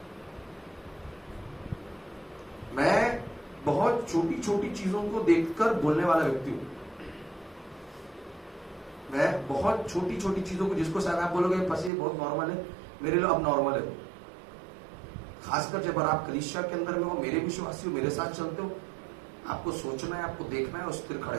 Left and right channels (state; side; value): drops out; left; at 11.9 s